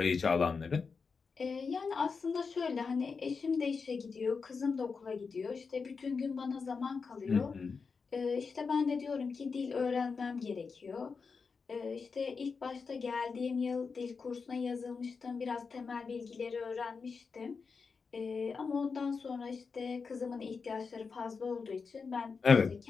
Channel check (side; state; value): right; quieter; 5.1 dB